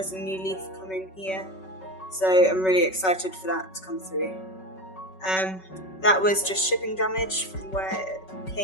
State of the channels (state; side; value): late; right; 5.3 ms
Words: a new leaf coming here, so I'm really excited for that to come through. That was just shipping damage from where it